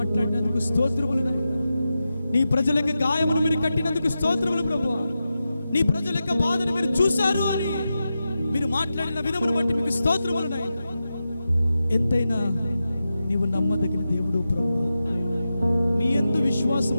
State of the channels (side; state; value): both; inverted; correlation -0.91